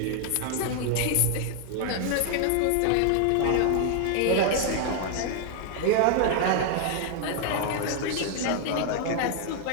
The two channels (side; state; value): both; different; correlation 0.00